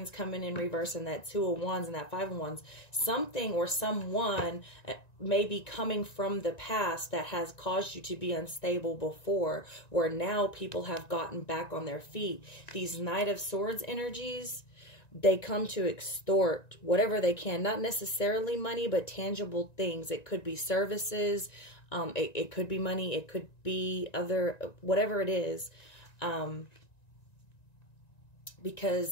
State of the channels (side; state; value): right; late; 1.9 ms